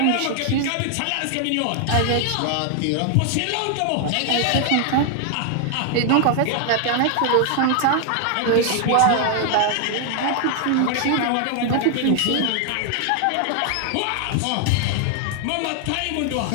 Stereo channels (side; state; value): both; different; correlation 0.00